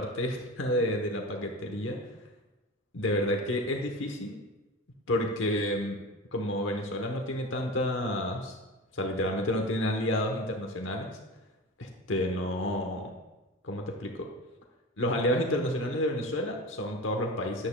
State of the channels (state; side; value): normal; both; correlation 0.30